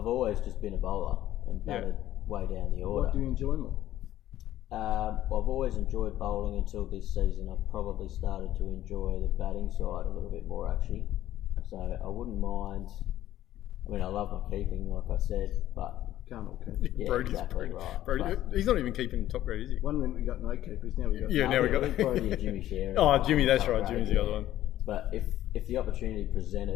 always just been a bowler and batted way down the order. What do you enjoy more? I've always enjoyed bowling until this season. I've probably started to enjoy the batting side a little bit more, actually. So I wouldn't mind. I mean, I love my keeping, like I said, but can't all keep. Yeah, Brodie's exactly right. He's not even keeping top grade, is he? One minute we got no keepers, now we got. Yeah, now we got. Brodie and Jimmy share. Jimmy, that's right. Jimmy's the other one. But if the opportunity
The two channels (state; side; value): quieter; right; 13.3 dB